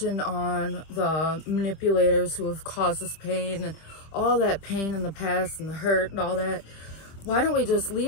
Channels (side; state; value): right; late; 25 ms